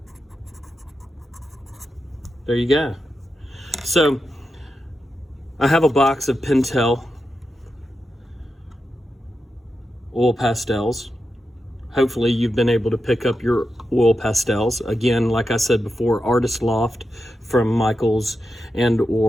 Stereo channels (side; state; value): both; normal; correlation 0.89